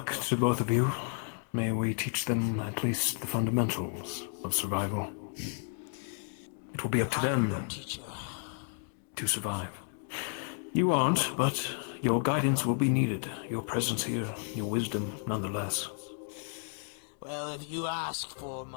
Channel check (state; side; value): silent; right; 56 dB below the other